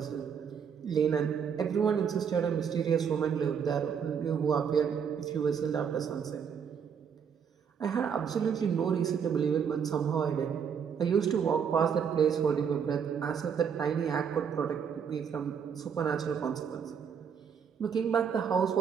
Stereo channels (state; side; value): quieter; left; 7.2 dB